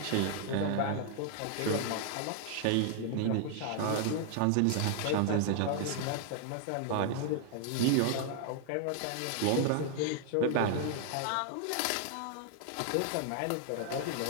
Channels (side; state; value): both; different; correlation 0.00